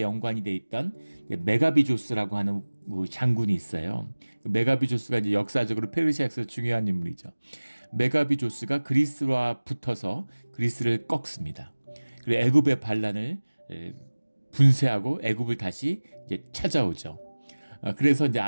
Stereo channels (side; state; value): both; inverted; correlation -1.00